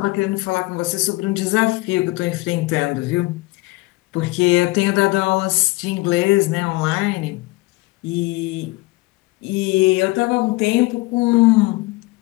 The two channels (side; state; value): right; quieter; 21.9 dB